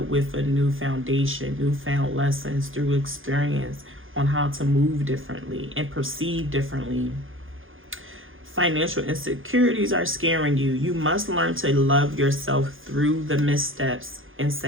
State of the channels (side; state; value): left; late; 0.59 ms